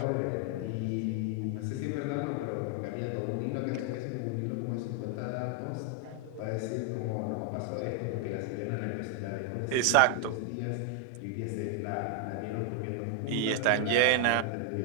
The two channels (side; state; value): both; different; correlation 0.00